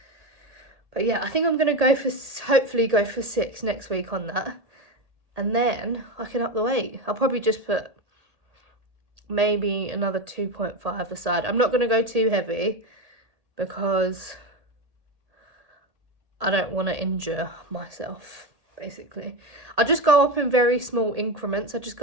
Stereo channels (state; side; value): late; left; 1.8 ms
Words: But yeah, I think I'm gonna hopefully go for 6 next week on that, and then I can up the weight. I'll probably just put maybe another 2.5 aside. I'm not gonna go too heavy because I don't want to injure myself, basically. I just go up in very small increments. I just